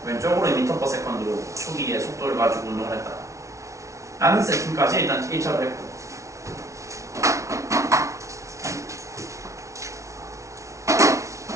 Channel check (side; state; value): left; late; 0.14 ms